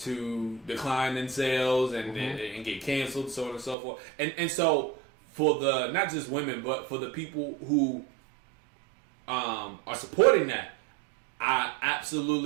decline in sales and get canceled, so on and so forth. And so for the not just women, but for the people who are supporting that, I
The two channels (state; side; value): drops out; left; at 3.8 s